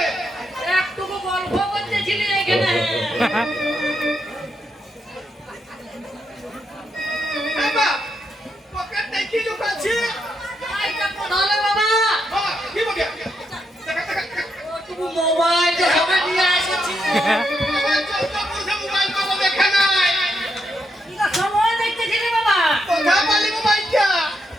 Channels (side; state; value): both; normal; correlation 0.80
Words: একটুকু গল্প করতেছিলি এখানে। বাবা পকেটে কি লুকাচ্ছি? তাহলে বাবা বাবা কি বলি? দেখা দেখা তুমি মোবাইলটা সবে নিয়ে এসেছি। মোবাইল পাবো দেখা নাই। এটা সময় দেখতেছিলি বাবা। কোথা পালি মোবাইলটা?